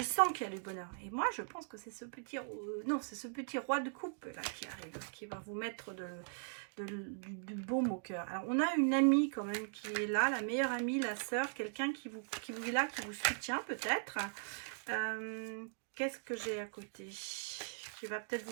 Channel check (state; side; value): silent; left; digital silence